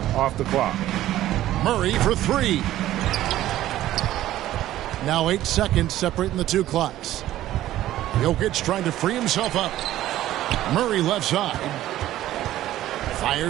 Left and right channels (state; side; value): quieter; left; 13.9 dB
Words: off the clock. Murray for 3. Now 8 seconds separating the two clocks. Jokic trying to free himself up. Murray left side.